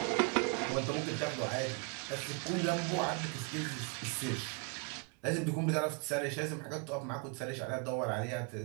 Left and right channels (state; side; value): quieter; left; 35.1 dB